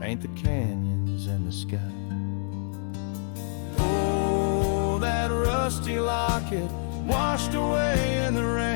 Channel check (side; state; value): right; silent; 60 dB below the other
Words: the canyons and the sky. That rusty locket washed away in the